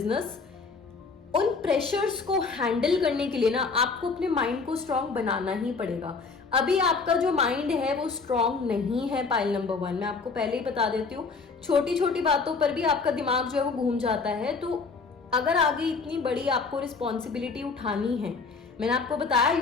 उन प्रेशर्स को हैंडल करने के लिए ना आपको अपने माइंड को स्ट्रांग बनाना ही पड़ेगा। अभी आपका जो माइंड है वो स्ट्रांग नहीं है। पाइल नंबर 1 मैं आपको पहले ही बता देती हूँ, छोटी छोटी बातों पर भी आपका दिमाग जो है वो घूम जाता है। तो अगर आगे इतनी बड़ी आपको रिस्पॉन्सिबिलिटी उठानी है, मैंने आपको बताया you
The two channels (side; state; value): right; quieter; 4.6 dB